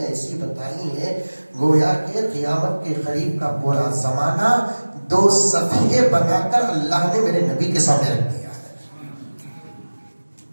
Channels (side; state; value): both; inverted; correlation -1.00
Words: ایسی بتائی ہیں، گویا کہ قیامت کے قریب کا پورا زمانہ 2 صفحے بنا کر اللہ نے میرے نبی کے سامنے رکھ دیا۔